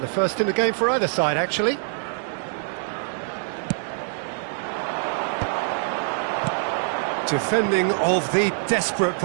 the first in the game for either side, actually. Defending of the desperate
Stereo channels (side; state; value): left; silent; 62 dB below the other